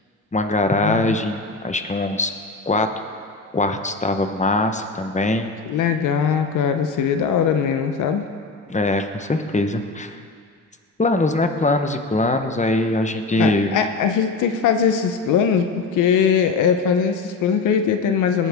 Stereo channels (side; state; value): right; quieter; 4.3 dB